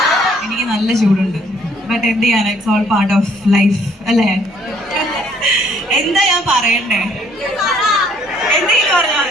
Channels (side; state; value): both; normal; correlation 0.63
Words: എനിക്ക് നല്ല ചൂടുണ്ട്. ബട്ട് എന്ത് ചെയ്യാൻ, it's all part of life അല്ലേ? എന്താ ഞാൻ പറയണ്ടേ? എന്തെങ്കിലും പറഞ്ഞാൽ